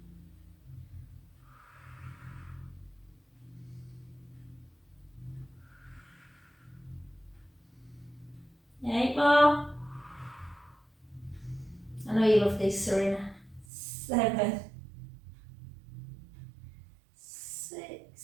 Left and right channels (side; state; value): left; drops out; at 13.7 s